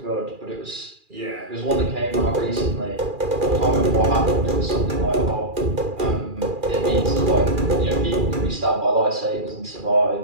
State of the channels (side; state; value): left; late; 2.4 ms